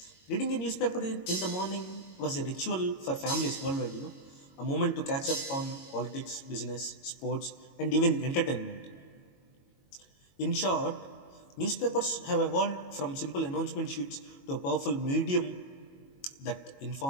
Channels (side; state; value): right; late; 22 ms